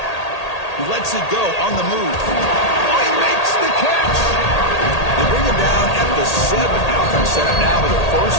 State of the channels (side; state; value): right; late; 1.8 ms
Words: He lets it go on the move. Oh, he makes the catch! They bring him down at the 7. Offense set up now with a